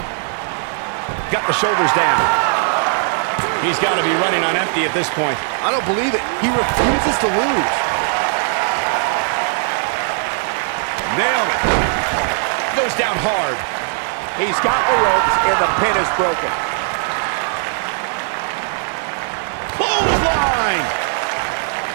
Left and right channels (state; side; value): silent; left; digital silence